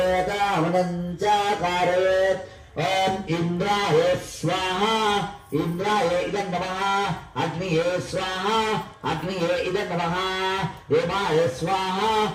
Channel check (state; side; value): identical; both; correlation 1.00